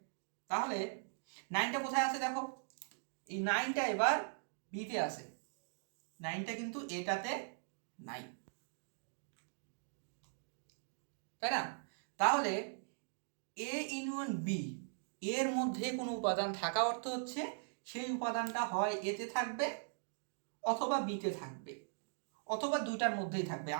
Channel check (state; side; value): silent; left; digital silence